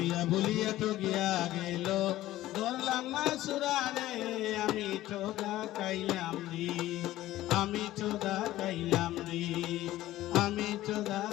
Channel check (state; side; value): quieter; right; 15.3 dB